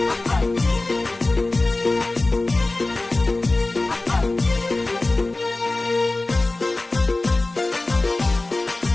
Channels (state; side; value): quieter; right; 3.0 dB